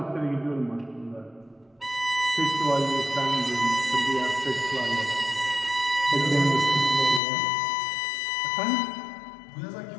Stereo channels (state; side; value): drops out; right; at 7.2 s